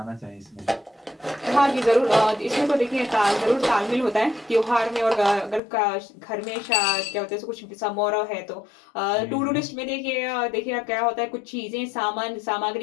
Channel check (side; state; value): right; drops out; at 5.6 s